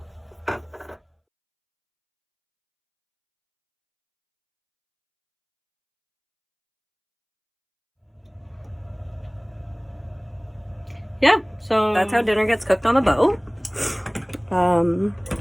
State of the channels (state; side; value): identical; both; correlation 1.00